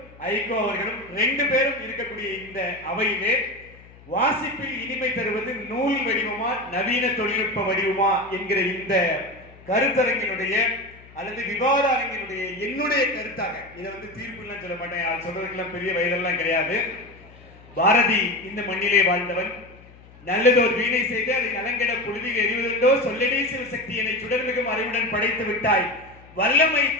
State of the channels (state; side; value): noise; left; hum, 23 dB below the sound